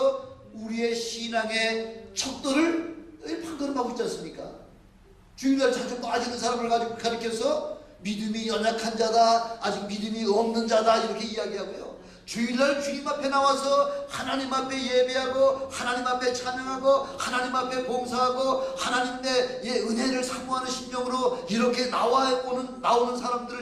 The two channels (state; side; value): identical; both; correlation 1.00